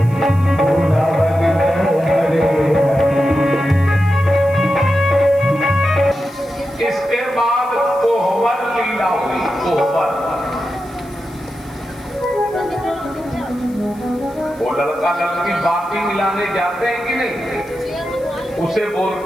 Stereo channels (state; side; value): noise; left; hiss, 26 dB below the sound